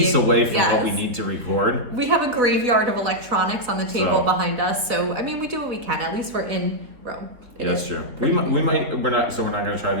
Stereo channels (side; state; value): left; late; 3.7 ms